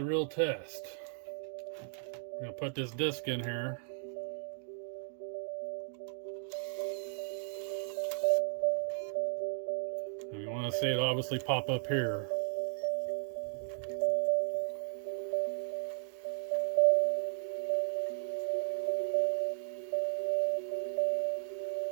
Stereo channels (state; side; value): silent; left; digital silence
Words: real test. We're gonna put this disc in here. And we want to see it obviously pop up here.